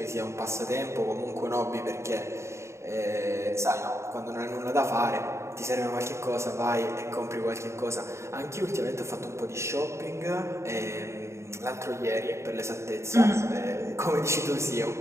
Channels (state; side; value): late; left; 0.14 ms